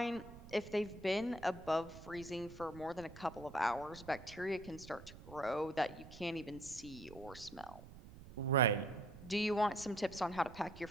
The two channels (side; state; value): right; noise; rumble, 16 dB below the sound